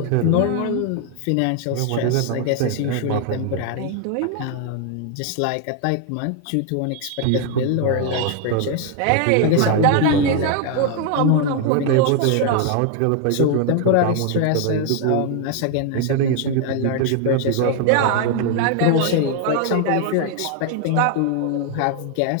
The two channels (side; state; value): both; different; correlation 0.00